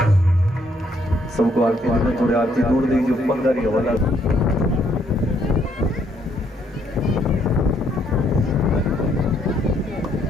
सबको आरती देना, थोड़े आरती दूर दीजिए, पंगारी हवाला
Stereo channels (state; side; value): normal; both; correlation 0.70